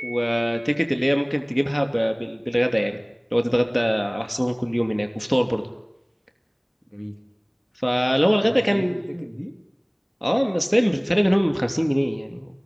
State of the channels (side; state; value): both; identical; correlation 1.00